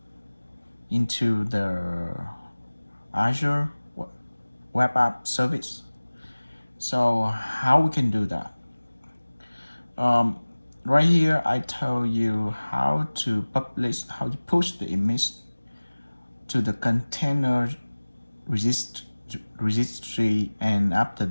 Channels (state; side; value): inverted; both; correlation -1.00